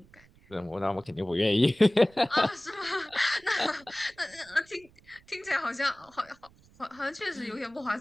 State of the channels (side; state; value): right; noise; rumble, 27 dB below the sound